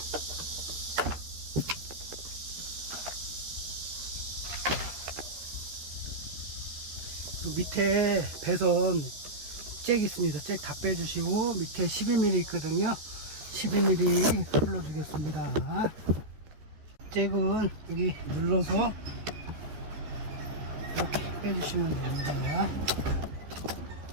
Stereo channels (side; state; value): left; late; 13 ms